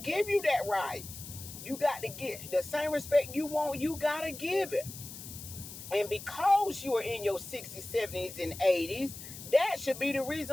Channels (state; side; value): noise; left; hiss, 12 dB below the sound